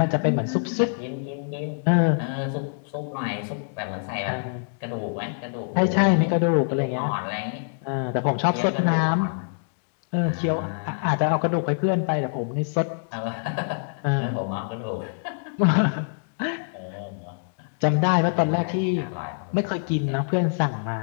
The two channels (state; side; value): silent; right; digital silence